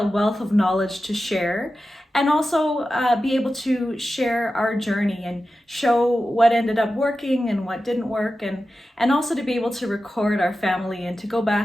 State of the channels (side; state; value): both; normal; correlation 0.93